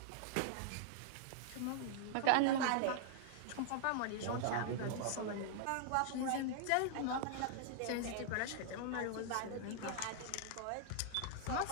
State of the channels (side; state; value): both; different; correlation -0.01